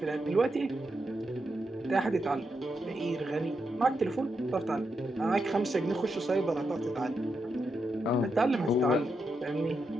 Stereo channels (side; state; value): both; normal; correlation 0.84